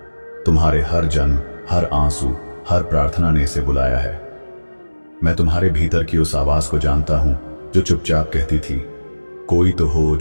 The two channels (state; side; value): inverted; both; correlation -1.00